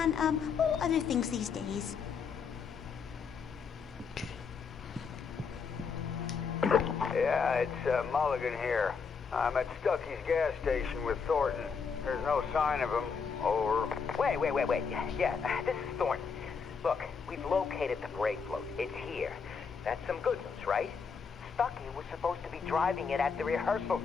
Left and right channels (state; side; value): quieter; right; 5.7 dB